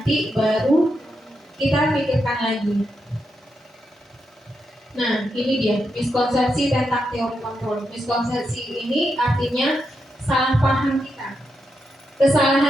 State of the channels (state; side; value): normal; both; correlation 0.84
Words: baru kita pikirkan lagi. Nah, ini dia miskonsepsi tentang teori kontrol. Miskonsepsi ini artinya salah paham kita.